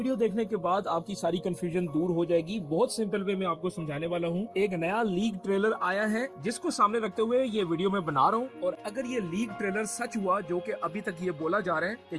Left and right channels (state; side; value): identical; both; correlation 1.00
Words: देखने के बाद आपकी सारी कंफ्यूजन दूर हो जाएगी। बहुत सिंपल वे में आपको समझाने वाला हूँ। एक नया लीक ट्रेलर आया है जिसको सामने रखते हुए ये वीडियो मैं बना रहा हूँ। और अगर ये लीक ट्रेलर सच हुआ, जो कि अभी तक ये बोला जा रहा है कि